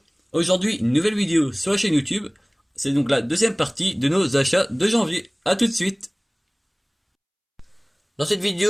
Aujourd'hui, une nouvelle vidéo sur la chaîne YouTube. C'est donc la deuxième partie de nos achats de janvier. A tout de suite. Dans cette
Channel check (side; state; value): both; identical; correlation 1.00